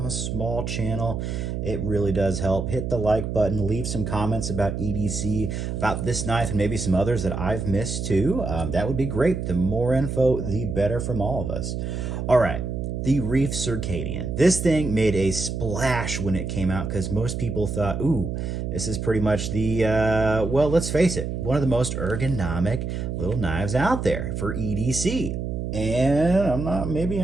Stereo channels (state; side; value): noise; right; hum, 3 dB below the sound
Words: a small channel. It really does help. Hit the like button, leave some comments about EDC, about this knife, and maybe some others that I've missed too. That would be great. The more info, the better from all of us. All right, the Reiff Circadian. This thing made a splash when it came out because most people thought, ooh, this is pretty much the, well, let's face it, one of the most ergonomic little knives out there for EDC. And I'm